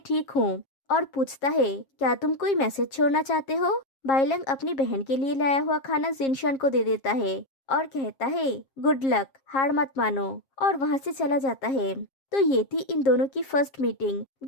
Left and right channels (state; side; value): late; right; 7.4 ms